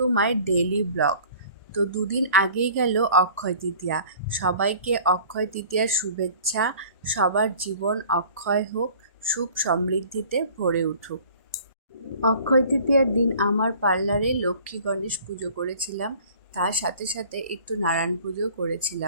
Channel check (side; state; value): both; inverted; correlation -0.49